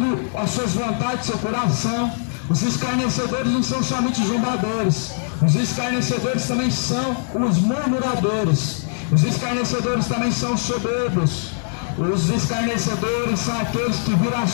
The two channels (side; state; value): right; silent; digital silence